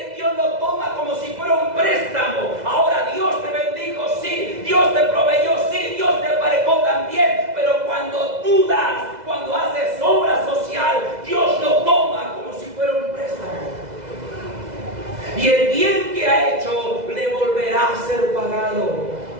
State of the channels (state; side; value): late; left; 2.0 ms